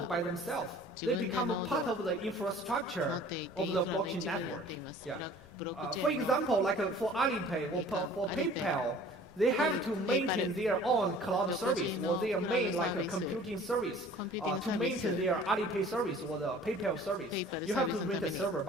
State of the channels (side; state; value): both; normal; correlation 0.49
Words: by themselves. They become a part of the infrastructure of the blockchain network. Yeah. For example, like for Alipay or for PayPal, they have to maintain their own cloud service or their main like a computing service to maintain their Alipay service or the PayPal service. You have to rent a server